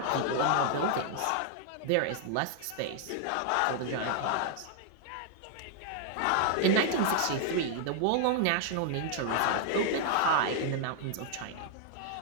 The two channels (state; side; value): different; both; correlation 0.00